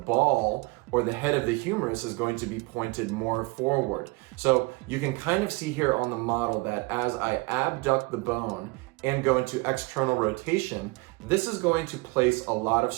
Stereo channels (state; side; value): quieter; left; 25.2 dB